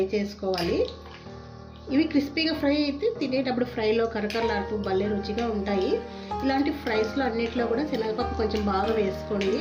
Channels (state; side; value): identical; both; correlation 1.00